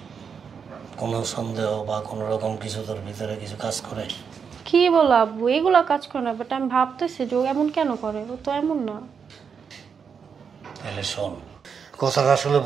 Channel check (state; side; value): quieter; left; 6.4 dB